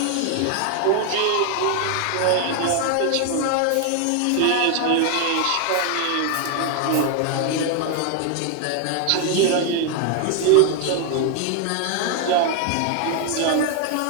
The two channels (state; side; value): different; both; correlation 0.01